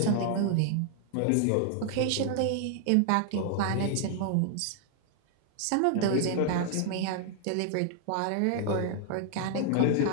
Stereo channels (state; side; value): different; both; correlation -0.01